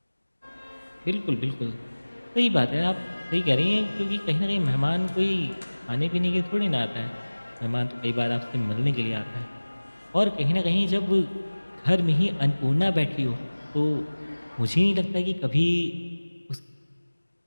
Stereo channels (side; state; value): both; inverted; correlation -1.00